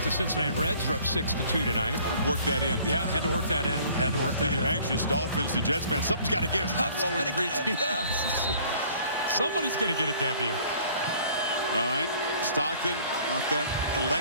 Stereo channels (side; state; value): both; inverted; correlation -0.54